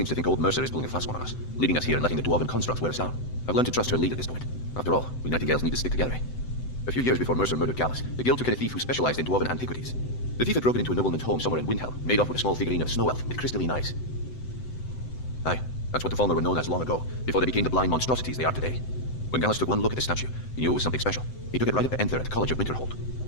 to think old Mercer is pulling a fast one on us, leaving us here and letting the dwarven constructs wear us down. I've learned to trust her lead at this point. After all, we nightingales need to stick together. A few years before Mercer murdered Gallus, the Guild took in a thief who specialized in dwarven antiquities. The thief had broken into a nobleman's home somewhere in Windhelm, made off with a small figurine of a snow elf with crystalline eyes. Aye, that's what the Falmer were known as long ago, before they became the blind monstrosities they are today. When Gallus took one look at the statue, he knew it was something special. He took it right up to Enther at the College of Winterhold.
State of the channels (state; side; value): late; right; 7.9 ms